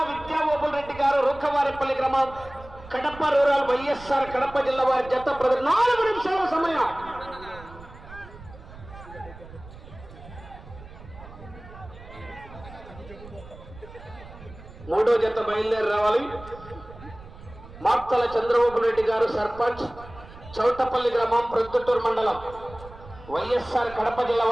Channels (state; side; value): noise; right; rumble, 17 dB below the sound